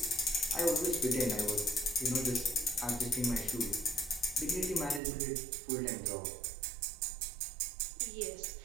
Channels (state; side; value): drops out; left; at 5.0 s